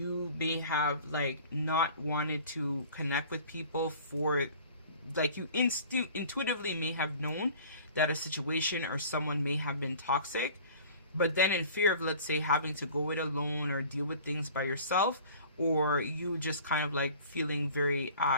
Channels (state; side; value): inverted; both; correlation -0.46